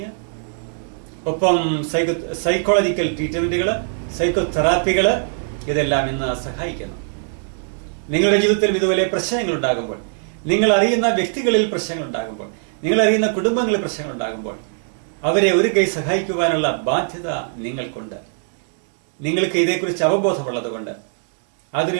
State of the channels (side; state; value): left; silent; digital silence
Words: ഒപ്പം സൈക്കോളജിക്കൽ ട്രീറ്റ്മെന്റുകൾ, സൈക്കോതെറാപ്പികൾ ഇതെല്ലാം ഇന്ന് സഹായിക്കുന്നു. നിങ്ങളുടെ ജീവിതത്തിൽ ഇതുപോലെ പ്രശ്നങ്ങൾ ഉണ്ടാകുമ്പോൾ, നിങ്ങൾ അറിയുന്ന വ്യക്തികളിൽ പ്രശ്നങ്ങൾ ഉണ്ടാകുമ്പോൾ, നിങ്ങൾ അറിയുന്ന കുടുംബങ്ങളിൽ പ്രശ്നങ്ങൾ ഉണ്ടാകുമ്പോൾ അവരെ ഒരു കൈ സഹായിക്കുവാനുള്ള ബാധ്യത നിങ്ങൾക്കുണ്ട്. നിങ്ങൾക്ക് ഇതേക്കുറിച്ച് അവബോധമുള്ളതുകൊണ്ട്,